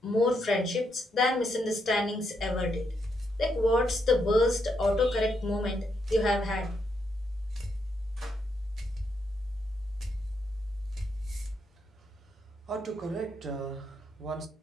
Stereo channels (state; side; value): normal; both; correlation 0.79